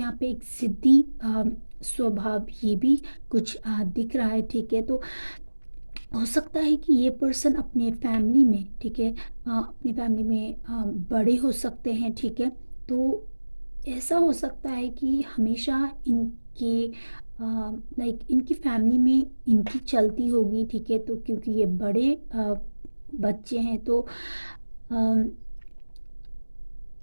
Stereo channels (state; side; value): inverted; both; correlation -1.00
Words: पे एक ज़िद्दी स्वभाव ये भी कुछ दिख रहा है, ठीक है। तो हो सकता है कि ये पर्सन अपने फैमिली में, ठीक है, अपनी फैमिली में बड़े हो सकते हैं, ठीक है। तो ऐसा हो सकता है कि हमेशा इनके लाइक इनकी फैमिली में इनकी चलती होगी, ठीक है। तो क्योंकि ये बड़े बच्चे हैं तो अम,